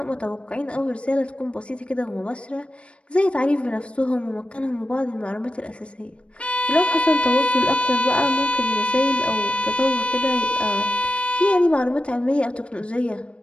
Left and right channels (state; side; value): late; right; 0.060 ms